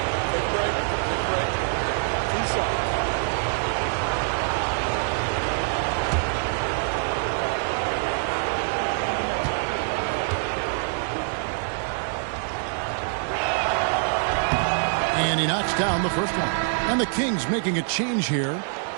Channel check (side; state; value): left; silent; 56 dB below the other